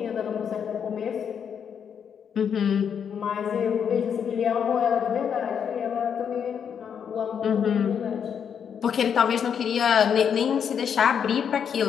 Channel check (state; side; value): quieter; right; 7.7 dB